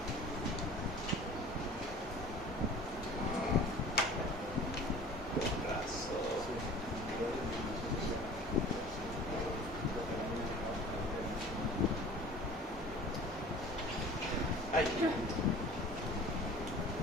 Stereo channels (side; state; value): both; normal; correlation 0.44